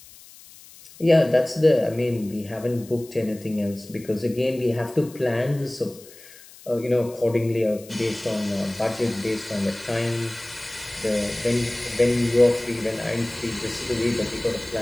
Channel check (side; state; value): left; noise; hiss, 21 dB below the sound